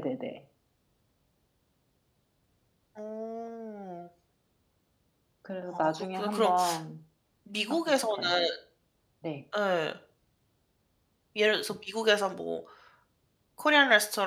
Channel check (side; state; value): both; identical; correlation 1.00